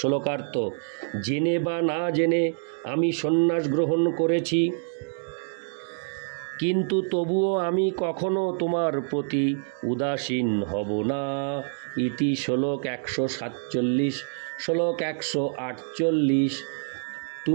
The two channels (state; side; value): silent; left; digital silence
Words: জেনে বা না জেনে আমি সন্ন্যাস গ্রহণ করেছি, কিন্তু তবুও আমি কখনো তোমার প্রতি উদাসীন হব না। ইতি শ্লোক 147। শ্লোক 148।